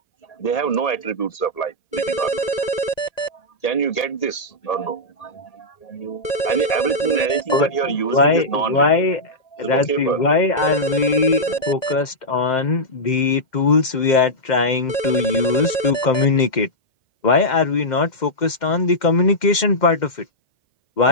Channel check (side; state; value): right; late; 2.1 ms